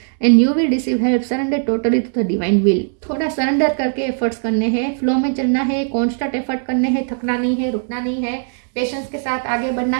and you will receive help, surrender totally to the divine will. थोड़ा सरेंडर करके एफर्ट्स करने हैं, फ्लो में चलना है, कॉन्स्टेंट एफर्ट करने हैं, थकना नहीं है, रुकना नहीं है, पेशेंस के साथ आगे बढ़ना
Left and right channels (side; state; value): left; silent; 67 dB below the other